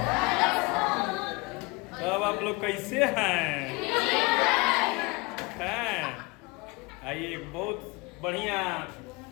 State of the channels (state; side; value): quieter; right; 25.7 dB